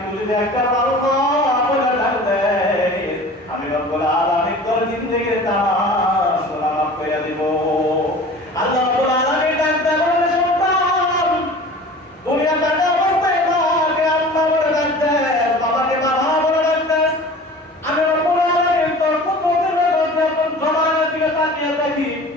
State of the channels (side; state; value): both; normal; correlation 0.41